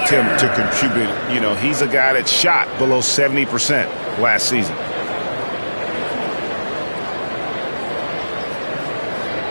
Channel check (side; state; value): both; inverted; correlation -1.00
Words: him to contribute. You know, he's a guy that shot below 70% last season.